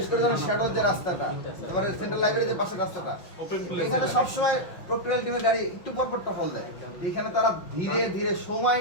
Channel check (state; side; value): late; right; 6.0 ms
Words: করে যেন শ্যাডো যে রাস্তাটা, এবারে সেন্ট্রাল লাইব্রেরি যে পাশে রাস্তাটা, এখানে সবসময় প্রক্রিয়াল টিমের গাড়ি একটু পর পর টহল দেয়। এখানে তারা ধীরে ধীরে সময়